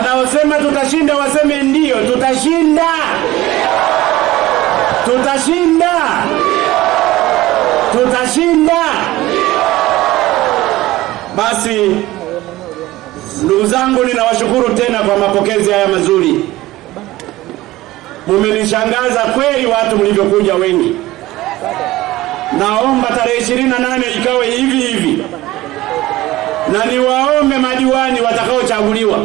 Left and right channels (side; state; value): left; quieter; 17.2 dB